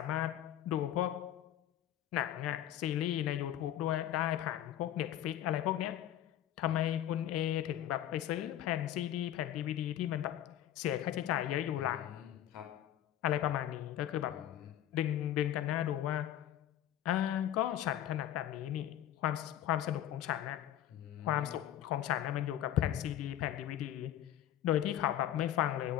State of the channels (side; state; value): right; quieter; 11.9 dB